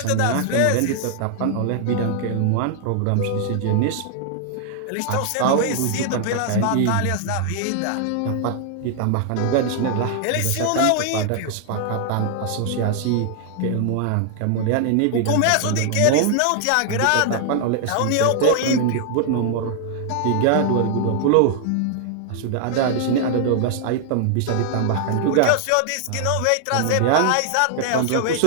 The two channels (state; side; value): different; both; correlation 0.00